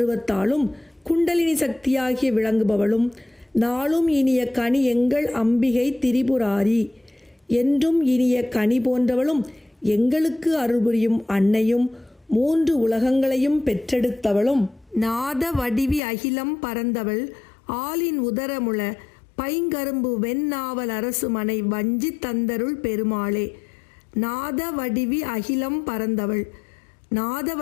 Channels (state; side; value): drops out; right; at 16.0 s